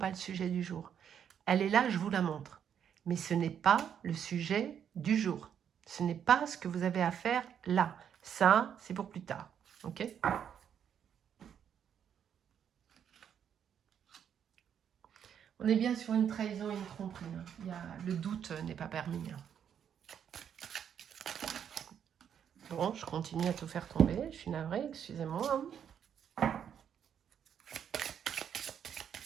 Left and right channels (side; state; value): left; quieter; 8.6 dB